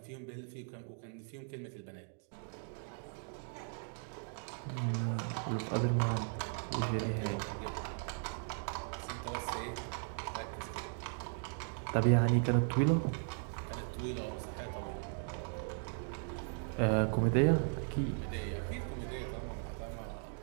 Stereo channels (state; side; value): silent; left; 53 dB below the other